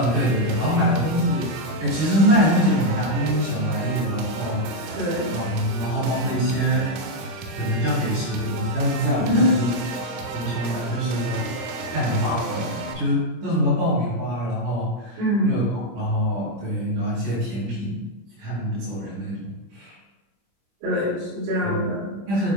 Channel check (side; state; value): left; late; 25 ms